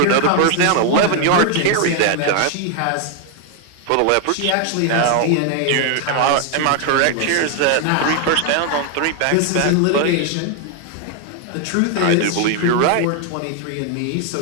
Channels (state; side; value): different; both; correlation 0.00